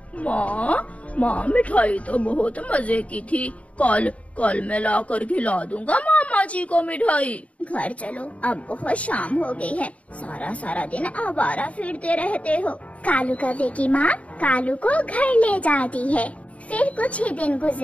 माँ मिठाई तो बहुत मजे की थी, कल मैं ला कर खिला दूंगा मामा जी को मिठाई। घर चलो, अब बहुत शाम हो गई है, सारा दिन आवारा फिरते रहते हो। कालू कौवे की माँ कालू को घर ले जाती है। फिर कुछ ही दिन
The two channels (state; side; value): late; right; 0.066 ms